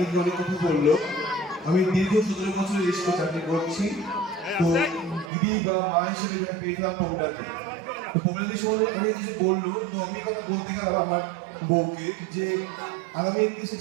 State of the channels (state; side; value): drops out; left; at 5.3 s